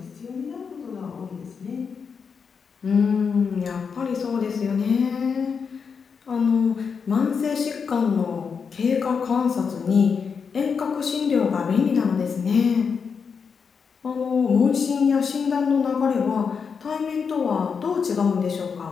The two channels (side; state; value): right; quieter; 6.0 dB